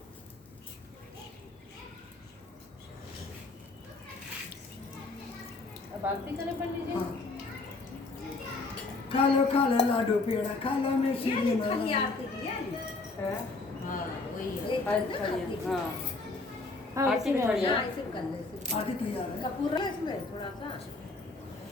अब आरती करें पंडित जी। हाँ खा लो लाडू पेड़ा खा लो में सीढ़ी माला। आरती की है है? हाँ वही है अच्छा ये, हाँ। हाँ आरती में खड़ी है। हाँ, इसे कर ले इसे। आरती तैयार है। कपूर है इसमें थोड़ा सा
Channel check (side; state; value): right; quieter; 3.5 dB